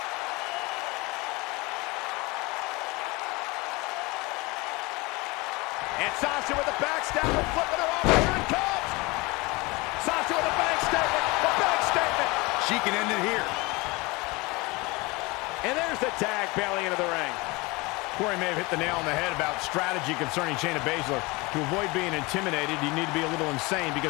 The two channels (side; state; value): right; quieter; 24.4 dB